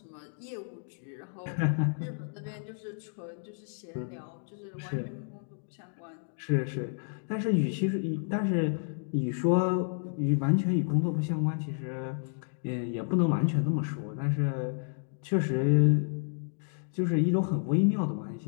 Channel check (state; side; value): silent; right; digital silence